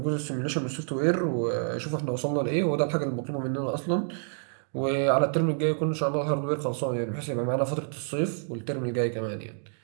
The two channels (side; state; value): left; silent; digital silence